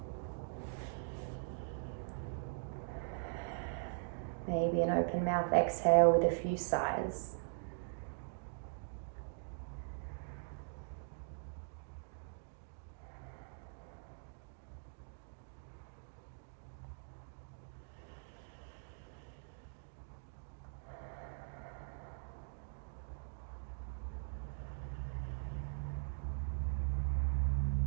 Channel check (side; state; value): left; silent; digital silence